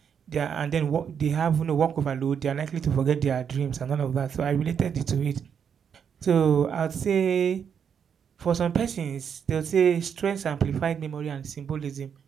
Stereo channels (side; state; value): left; quieter; 7.5 dB